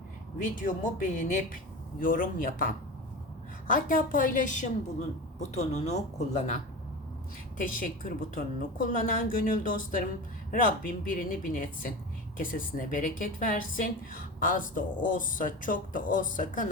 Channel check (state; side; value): normal; both; correlation 0.29